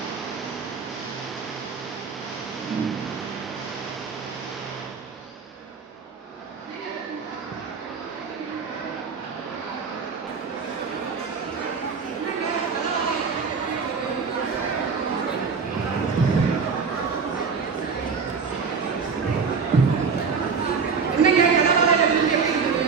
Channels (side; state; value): left; quieter; 5.5 dB